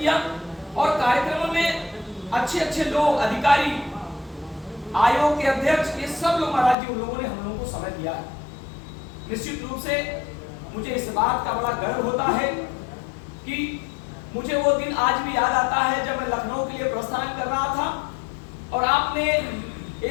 और कार्यक्रमों में अच्छे अच्छे लोग, अधिकारी, आयोग के अध्यक्ष, ये सब लोग महाराज जी उन लोगों ने हम लोगों को समय दिया है। निश्चित रूप से मुझे इस बात का बड़ा गर्व होता है कि मुझे वो दिन आज भी याद आता है जब मैं लखनऊ के लिए प्रस्थान कर रहा था, और आपने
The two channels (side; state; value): right; drops out; at 6.8 s